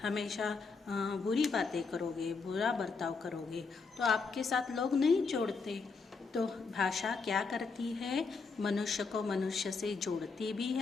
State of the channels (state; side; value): quieter; right; 4.6 dB